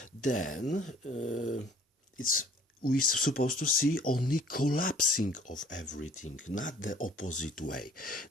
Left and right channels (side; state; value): both; normal; correlation 0.54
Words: then we're supposed to see only collapsing of everything, not the opposite way